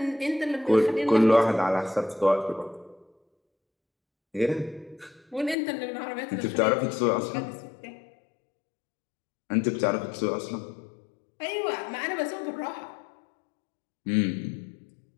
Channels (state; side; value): drops out; right; at 5.6 s